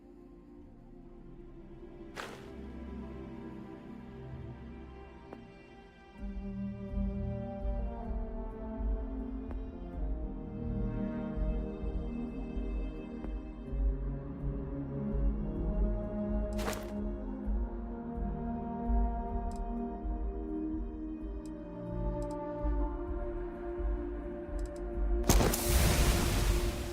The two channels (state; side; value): identical; both; correlation 1.00